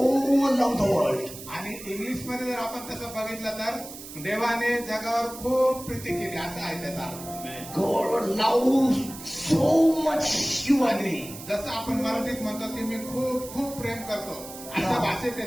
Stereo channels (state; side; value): noise; right; hiss, 13 dB below the sound